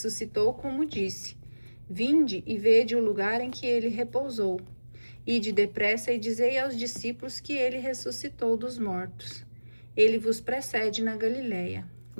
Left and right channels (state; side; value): inverted; both; correlation -1.00